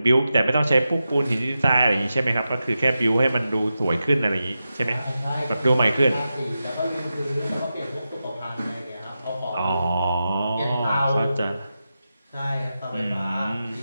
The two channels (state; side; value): inverted; both; correlation -0.90